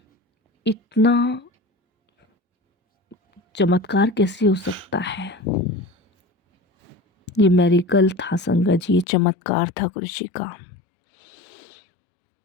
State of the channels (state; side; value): drops out; right; at 9.1 s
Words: इतना चमत्कार कैसे हो सकता है। ये मेरिकल था संगत जी, ये चमत्कार था गुरुजी का।